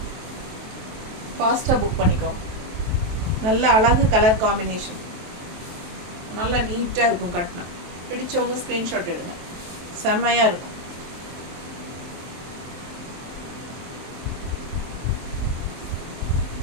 ஃபாஸ்ட்டாக புக் பண்ணிக்கோங்க. நல்ல அழகு கலர் காம்பினேஷன், நல்லா நீட்டாக இருக்கும் கட்டினா. பிடிச்சவங்க ஸ்க்ரீன்ஷாட் எடுங்க, செம்மையாக இருக்கும்.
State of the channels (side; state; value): left; late; 23 ms